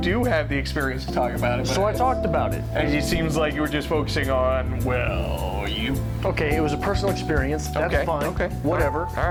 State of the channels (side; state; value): both; identical; correlation 1.00